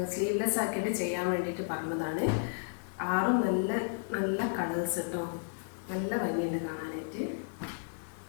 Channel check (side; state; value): right; silent; digital silence